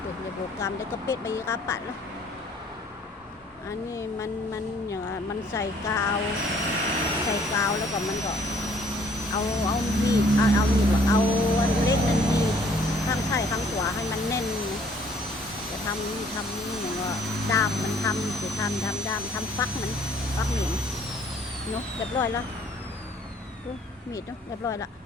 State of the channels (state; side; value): normal; both; correlation 0.60